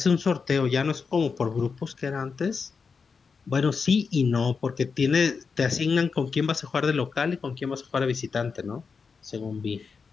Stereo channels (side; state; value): right; quieter; 5.3 dB